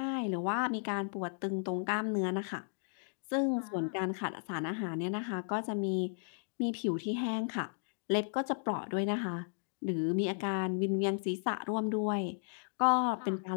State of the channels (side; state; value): right; silent; digital silence